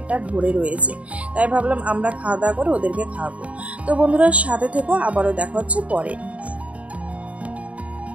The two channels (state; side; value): late; left; 0.066 ms